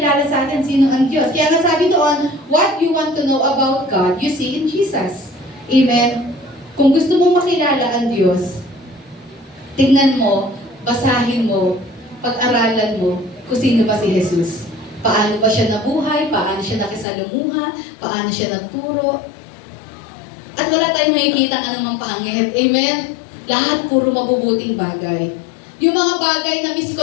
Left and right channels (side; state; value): right; drops out; at 17.1 s